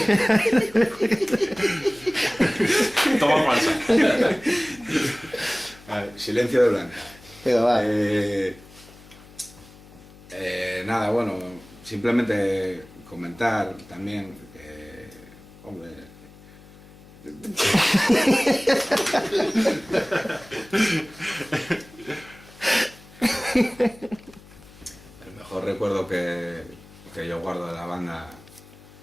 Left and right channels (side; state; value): left; noise; hum, 22 dB below the sound